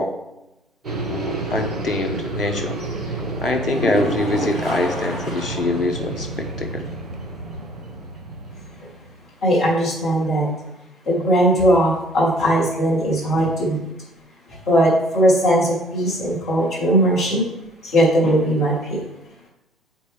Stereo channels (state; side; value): normal; both; correlation 0.57